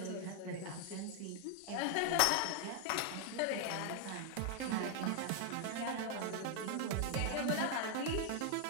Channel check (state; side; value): different; both; correlation 0.00